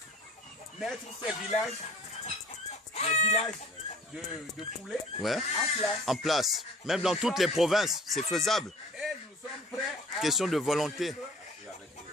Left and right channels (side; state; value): both; normal; correlation 0.49